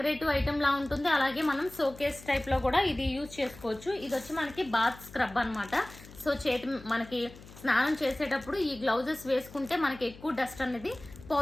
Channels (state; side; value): noise; left; hum, 19 dB below the sound